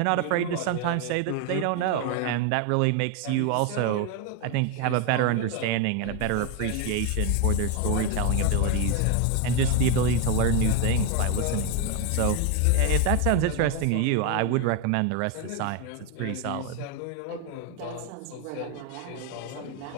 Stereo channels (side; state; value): both; different; correlation 0.01